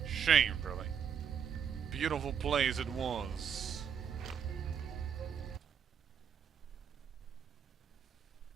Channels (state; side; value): quieter; left; 7.6 dB